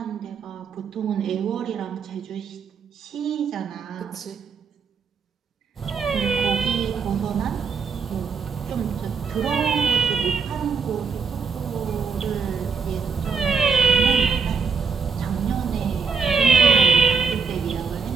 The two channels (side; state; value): left; quieter; 5.4 dB